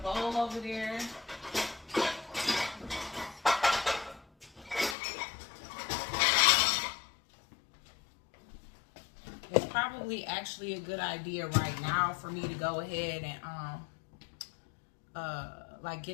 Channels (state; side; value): drops out; right; at 5.0 s